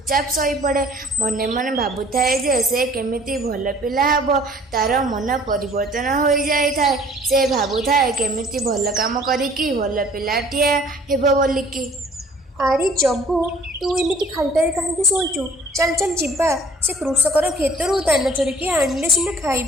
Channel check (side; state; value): both; normal; correlation 0.53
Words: ଶୋଇପଡ଼େ। ମନେ ମନେ ଭାବୁଥାଏ ଯେ ସେ କେମିତି ଭଲ ପିଲା ହେବ। ତାର ମନ ପରିବର୍ତ୍ତନ ହୋଇଯାଇଥାଏ। ସେ ଭାବୁଥାଏ କେମିତି ଭଲ କାମ କରିକି ଭଲ ପିଲାଟିଏ ହେବ ବୋଲିକି। ଆରେ ଜଗୁ ତୁ ଏମିତି ଖାଲିଟାରେ କାହିଁକି ଶୋଇଛୁ? ଚାଲ ଚାଲ ଯିବା ସେ କୃଷକର କ୍ଷେତରୁ ଦାନା ଚୋରିକି ଆଣିଲେ ସିନା